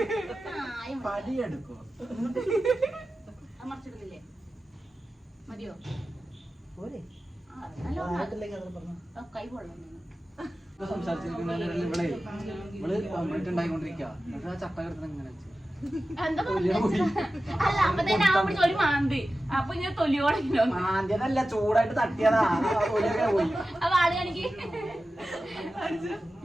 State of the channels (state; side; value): normal; both; correlation 0.94